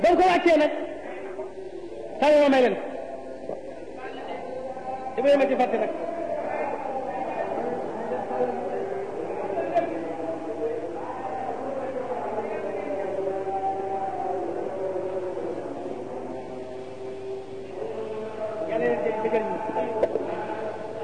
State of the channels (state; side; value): identical; both; correlation 1.00